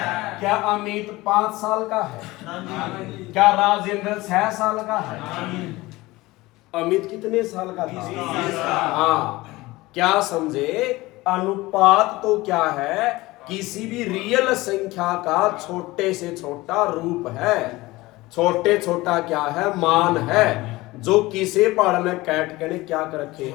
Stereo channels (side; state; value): right; quieter; 20.0 dB